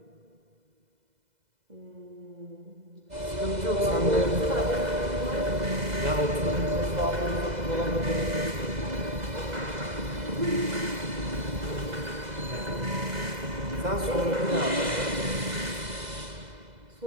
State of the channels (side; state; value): left; late; 2.0 ms